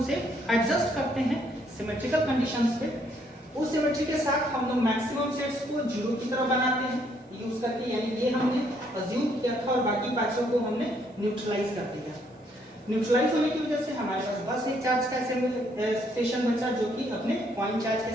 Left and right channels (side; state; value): both; normal; correlation 0.69